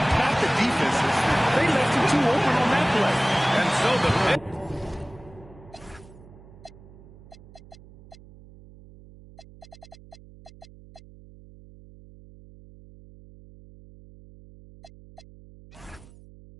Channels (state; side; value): noise; right; hum, 22 dB below the sound